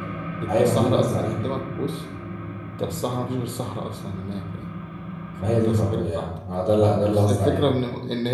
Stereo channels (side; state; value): both; identical; correlation 1.00